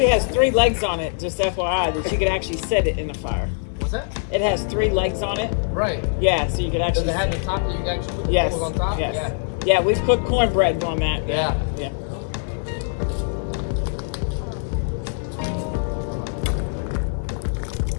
has 3 legs on it, just FYI, that you could actually set it in the fire. What's that? It has 3 legs on it. Right. Yeah, so you could actually. Does it have the top that you can actually put the Yes. coals on top? Yes. Yeah. Yeah, we've cooked cornbread on that. Yeah. Yeah.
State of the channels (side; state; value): right; silent; digital silence